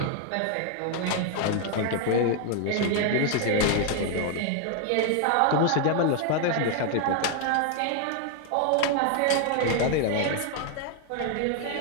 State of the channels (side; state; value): both; different; correlation 0.00